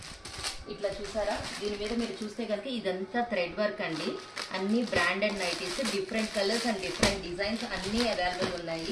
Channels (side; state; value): both; identical; correlation 1.00